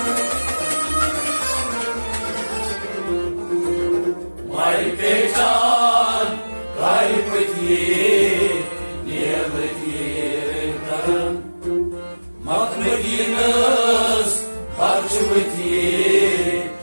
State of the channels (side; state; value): both; inverted; correlation -1.00